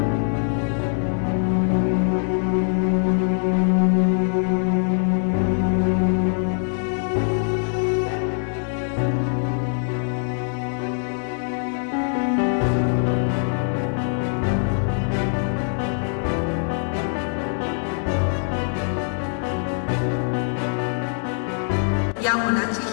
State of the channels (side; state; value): right; silent; 63 dB below the other